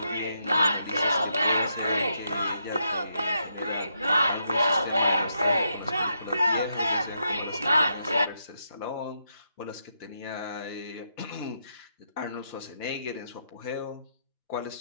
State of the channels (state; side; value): inverted; both; correlation -0.79